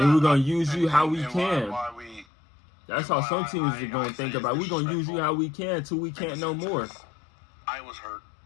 we're going to use you how we and can. That's how some teams are going to think about it. We're going to use you how we can till we can't no more. I was hurt.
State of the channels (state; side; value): drops out; right; at 2.2 s